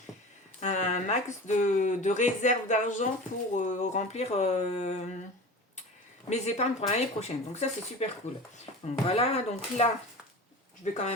réserve d'argent pour remplir mes épargnes pour l'année prochaine. Donc ça, c'est super cool. Donc voilà, donc là, je vais quand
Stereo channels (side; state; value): both; normal; correlation 0.34